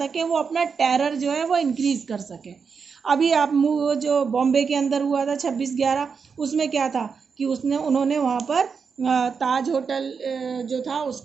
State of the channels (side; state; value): left; quieter; 5.8 dB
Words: वो अपना टेरर जो है वो इंक्रीज़ कर सके। अभी आप जो बॉम्बे के अंदर हुआ था 26/11, उसमें क्या था कि उन्होंने वहाँ पर ताज होटल जो था